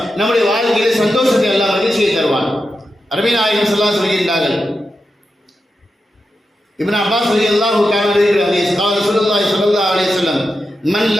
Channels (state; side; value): normal; both; correlation 0.89